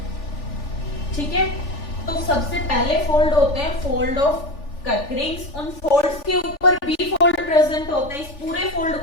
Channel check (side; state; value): right; late; 3.4 ms